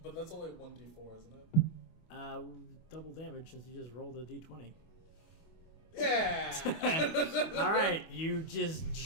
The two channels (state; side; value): late; right; 25 ms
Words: But that's only 1d4, isn't it? Double damage since you just rolled a d20. Yeah! All right, you just